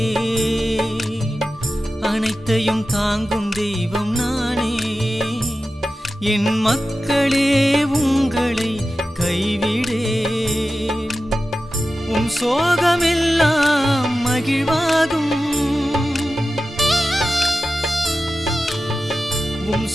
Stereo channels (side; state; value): both; normal; correlation 0.94